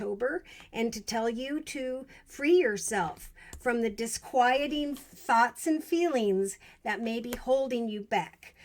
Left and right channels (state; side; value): identical; both; correlation 1.00